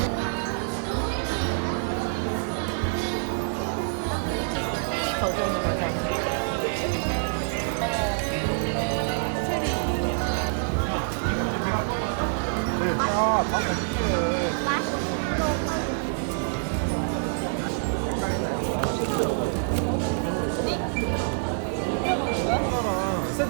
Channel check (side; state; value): left; silent; digital silence